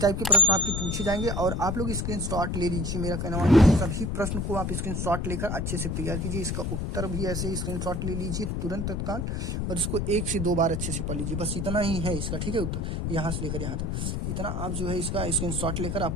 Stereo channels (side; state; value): left; noise; rumble, 1 dB below the sound